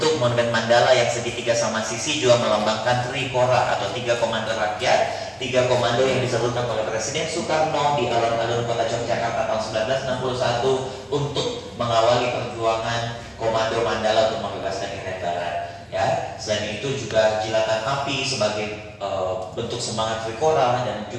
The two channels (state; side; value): identical; both; correlation 1.00